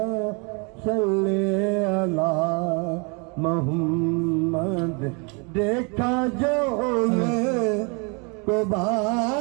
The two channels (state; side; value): quieter; left; 33.0 dB